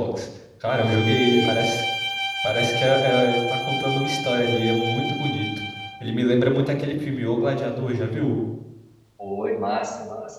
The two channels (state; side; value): identical; both; correlation 1.00